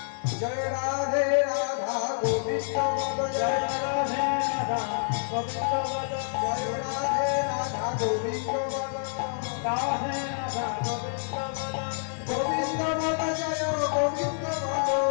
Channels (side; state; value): right; silent; 59 dB below the other